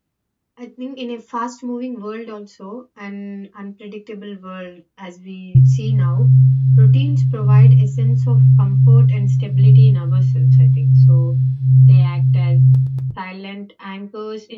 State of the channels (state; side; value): identical; both; correlation 1.00